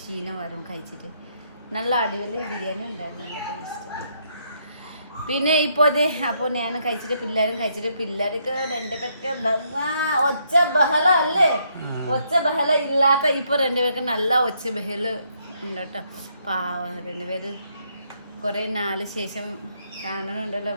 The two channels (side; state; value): both; inverted; correlation -0.73